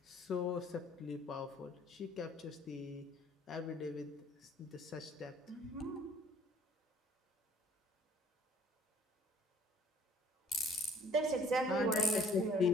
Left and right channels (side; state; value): both; normal; correlation 0.56